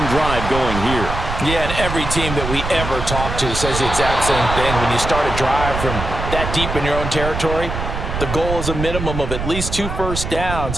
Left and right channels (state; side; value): noise; right; rumble, 5 dB below the sound